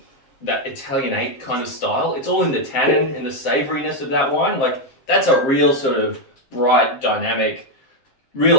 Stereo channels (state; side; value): late; right; 7.5 ms